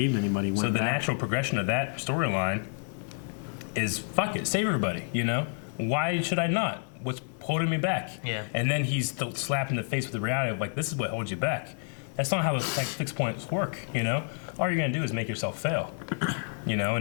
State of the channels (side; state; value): right; silent; 57 dB below the other